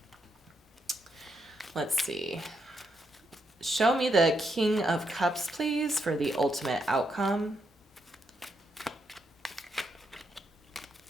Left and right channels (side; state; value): both; normal; correlation 0.80